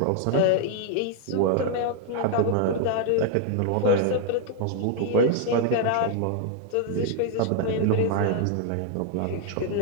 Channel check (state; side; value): different; both; correlation 0.00